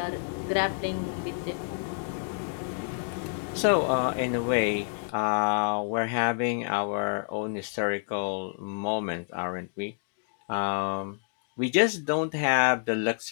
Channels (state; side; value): silent; right; digital silence